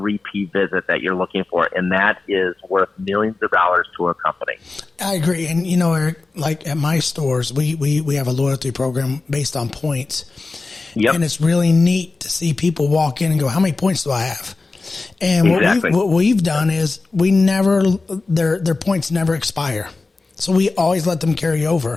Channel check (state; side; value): quieter; right; 3.7 dB